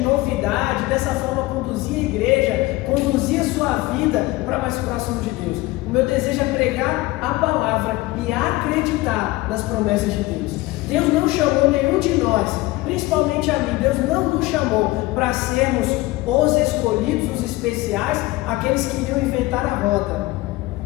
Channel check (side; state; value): right; quieter; 19.7 dB